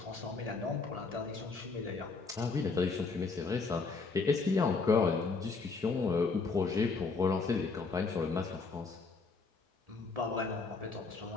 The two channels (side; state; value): right; quieter; 4.3 dB